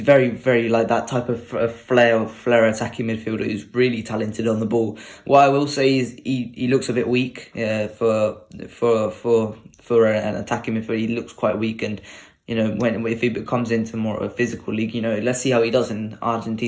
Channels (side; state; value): both; identical; correlation 1.00